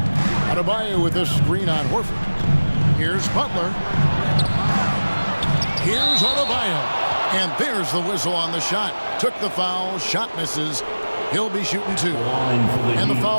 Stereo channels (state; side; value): inverted; both; correlation -1.00